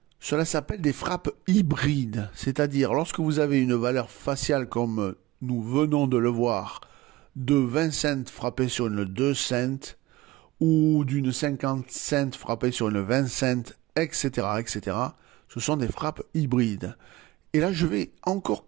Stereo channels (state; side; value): quieter; left; 18.3 dB